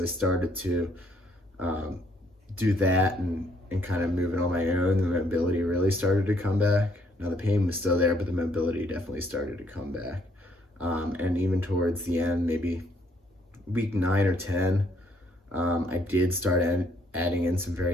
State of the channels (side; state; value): both; normal; correlation 0.68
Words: I started to do that and kind of moving on my own, the mobility really started to come back. Now the pain was still there, but the mobility definitely started to come back. And even towards the end, maybe week 9 or 10, I did start adding in some